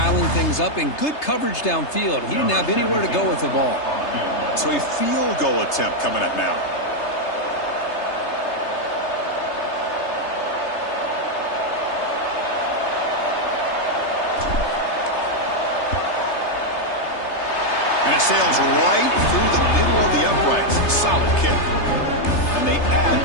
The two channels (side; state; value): right; late; 3.3 ms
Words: things up, and good coverage downfield. He didn't have anywhere to go with the ball. So a field goal attempt coming up now. And it sails right through the middle of the uprights. Solid kick. And they